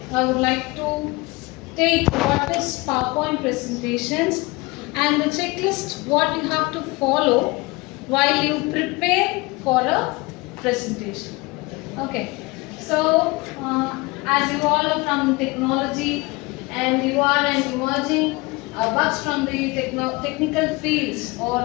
I would like to take what is PowerPoint presentations and the checklist what you have to follow while you prepare for a presentation. Okay. So as you all are from technology and you are an emerging bugs from the technical fields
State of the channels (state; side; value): quieter; right; 23.9 dB